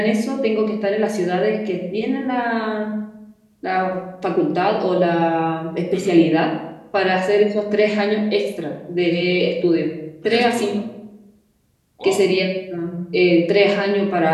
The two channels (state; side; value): identical; both; correlation 1.00